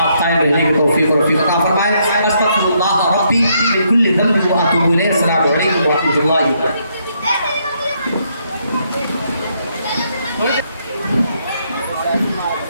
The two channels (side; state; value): both; inverted; correlation -0.74